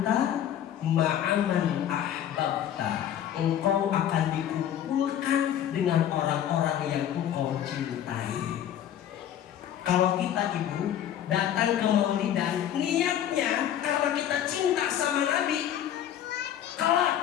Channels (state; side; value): quieter; right; 10.5 dB